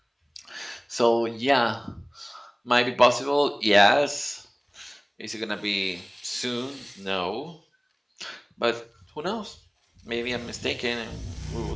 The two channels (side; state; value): both; identical; correlation 1.00